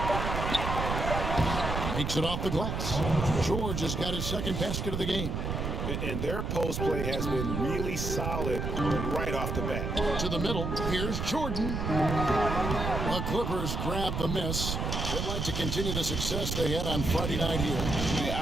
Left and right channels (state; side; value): noise; right; rumble, 2 dB below the sound